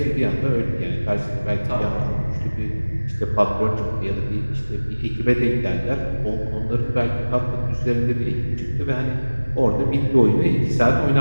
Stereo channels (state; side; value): inverted; both; correlation -1.00